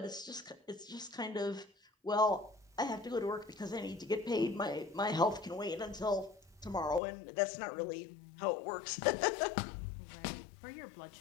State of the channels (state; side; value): drops out; right; at 7.0 s